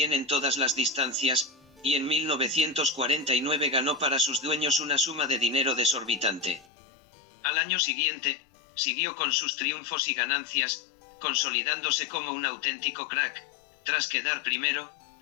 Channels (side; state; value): right; drops out; at 6.7 s